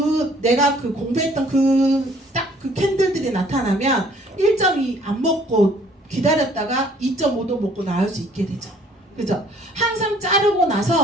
내가 공부했던 딱 그 캔들들이 나타나면 1.2 안 먹고 기다렸다가 2.5도 먹고 나올 수 있게 되죠. 그죠? 항상 자르고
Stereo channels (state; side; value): normal; both; correlation 0.59